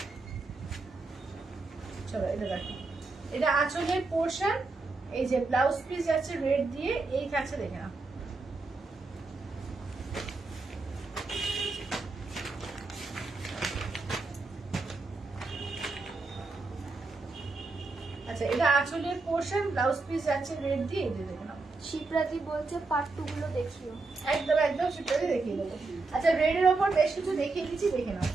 চলো এটা দেখো, এটা আঁচলের পোর্শন, এই যে ব্লাউজ পিস যাচ্ছে রেড দিয়ে, এই থাকছে দেখে নাও। আচ্ছা এটা আঁচলের পোর্শন, ব্লাউজ পিস যাচ্ছে রেড দিয়ে, এই যে দেখে নাও। শিপ্রাতি বলছে পার্ট 2 গুলো দেখিও। একদম একদম সেটাই দেখিয়ে দেবো। আচ্ছা রেডের ওপর বেশ কিছু দেখিয়ে দিচ্ছি, দেখে নাও,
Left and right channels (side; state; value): left; quieter; 3.7 dB